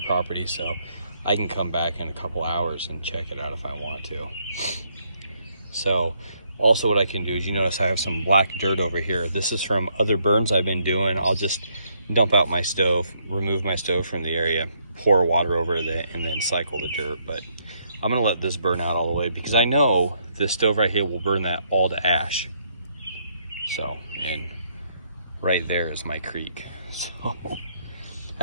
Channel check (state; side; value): inverted; both; correlation -0.72